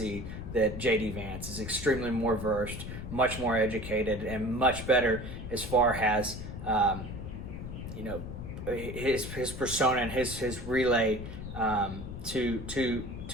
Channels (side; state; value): left; noise; rumble, 8 dB below the sound